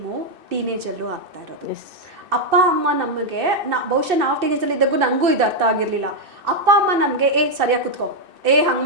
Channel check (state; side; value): late; left; 2.6 ms